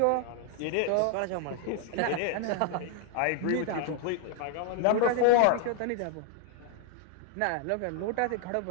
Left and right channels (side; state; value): both; different; correlation 0.00